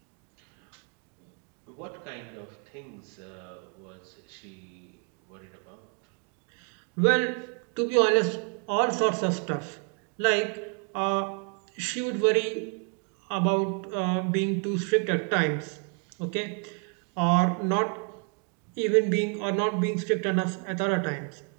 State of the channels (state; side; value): quieter; left; 38.9 dB